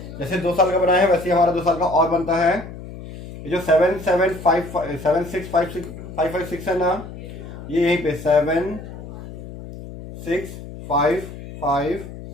जैसे 2 साल का बनाया है वैसे हमारा 2 साल का और बनता है। ये जो 76556 है ना, ये यहीं पे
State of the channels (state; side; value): noise; left; hum, 13 dB below the sound